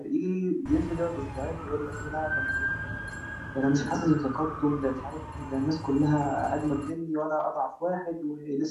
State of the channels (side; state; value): both; identical; correlation 1.00